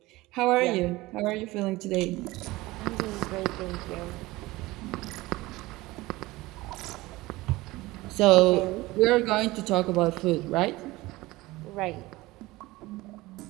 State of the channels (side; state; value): left; quieter; 19.7 dB